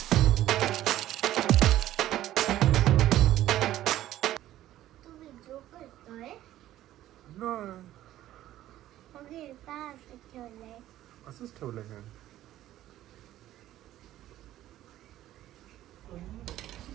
तुम्ही जो करतोय ठेवलंय असंच ठेवलंय का?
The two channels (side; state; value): left; quieter; 13.7 dB